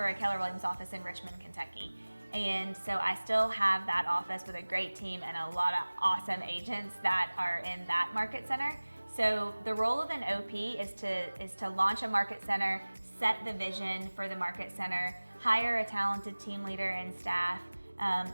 Keller Williams office in Richmond, Kentucky. And so I still have that office with a great team and a lot of awesome agents that are in that market center. So the role of an OP is to launch a market center, set the vision for the market center, hire a talented team leader and staff,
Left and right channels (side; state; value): both; inverted; correlation -1.00